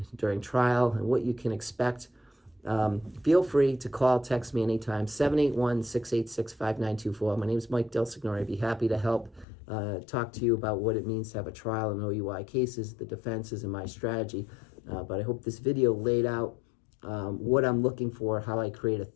during trial, and what you can expect. Feel free to call, text me anytime, 781-686-5924. My name is Mike DelSignore. I'd be happy to help talk to you about what it means to have a trial in OUI cases, the defenses, and my strategy. But I hope this video laid out what I'm looking for, how I create a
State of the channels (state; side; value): drops out; right; at 9.5 s